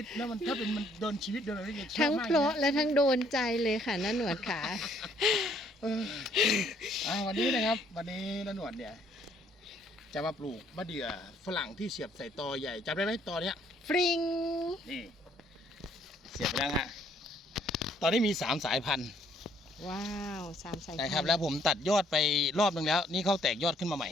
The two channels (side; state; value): both; normal; correlation 0.65